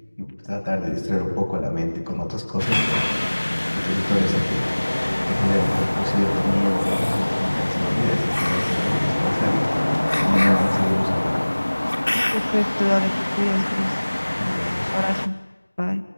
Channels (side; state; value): both; inverted; correlation -1.00